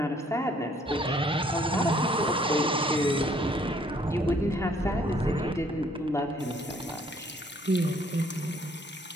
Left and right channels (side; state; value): both; normal; correlation 0.63